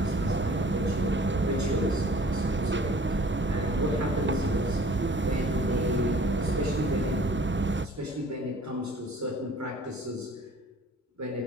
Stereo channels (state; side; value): normal; both; correlation 0.51